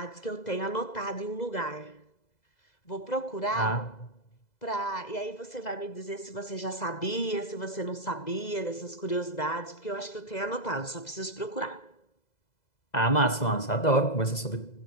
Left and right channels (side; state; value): right; late; 2.0 ms